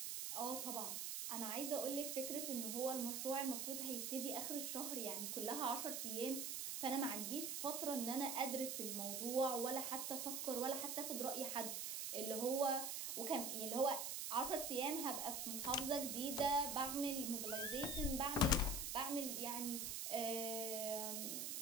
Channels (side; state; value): right; noise; hiss, 2 dB below the sound